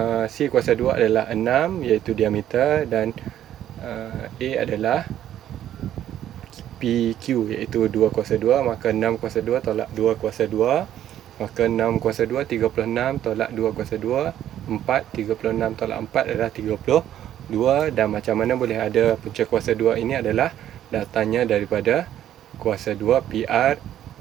adalah 6, iaitu diameter, dan A adalah PQ, iaitu 2 kuasa 2. Maka 6 kuasa 2 tolak 2 kuasa 2. Maka 6 kuasa 2, 36 tolak 2 kuasa 2. 4, 36 tolak 4 adalah 32. Dan macam mana boleh ada punca kuasa 2 ini adalah datangnya daripada kuasa 2 PR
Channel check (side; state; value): left; quieter; 11.4 dB